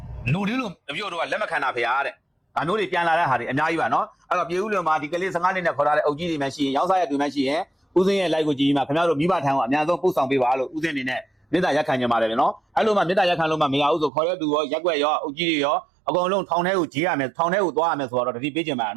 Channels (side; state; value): left; drops out; at 14.1 s